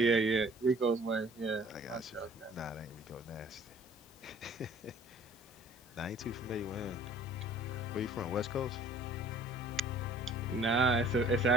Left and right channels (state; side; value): normal; both; correlation 0.53